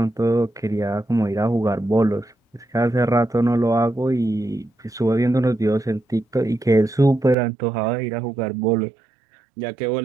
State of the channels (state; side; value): drops out; left; at 7.4 s